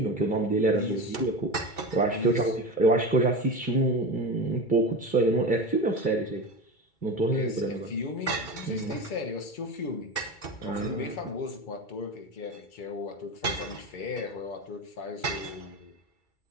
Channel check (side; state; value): right; late; 2.3 ms